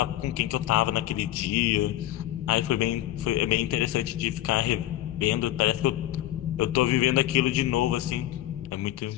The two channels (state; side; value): quieter; right; 14.2 dB